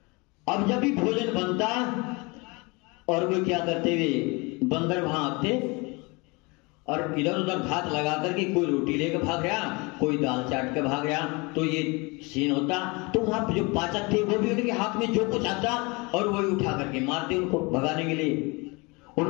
अब जब भी भोजन बनता और वो क्या करते हुए बंदर वहां आते और इधर उधर घात लगा करके कोई रोटी लेकर भाग गया, कोई दाल चाट के भाग गया, तो ये सीन होता। तो वहां जो पाचक थे वो भी उनके हाथ में जो कुछ आता और वही उठा करके मारते उनको भगाने के लिए।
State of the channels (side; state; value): right; quieter; 27.3 dB